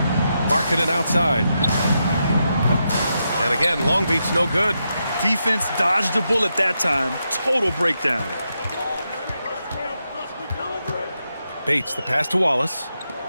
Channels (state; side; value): inverted; both; correlation -0.85